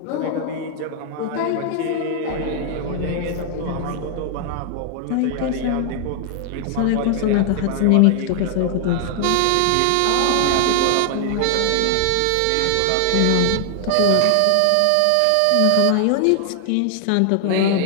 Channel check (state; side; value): different; both; correlation 0.00